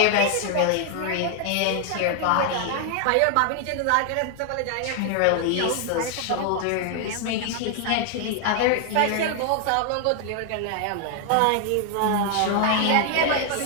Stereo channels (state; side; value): different; both; correlation 0.00